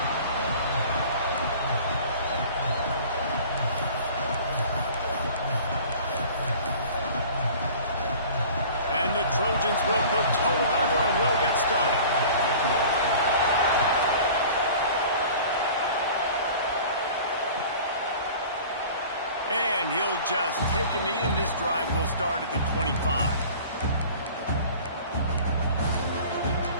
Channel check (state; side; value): inverted; both; correlation -0.44